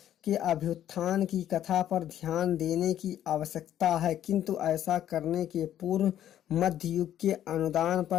के अभ्युत्थान की कथा पर ध्यान देने की आवश्यकता है, किंतु ऐसा करने के पूर्व मध्य युग के अनुदान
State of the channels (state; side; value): quieter; right; 11.3 dB